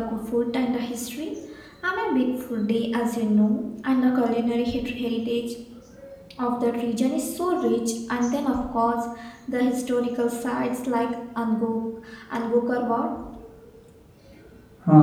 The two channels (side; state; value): both; identical; correlation 1.00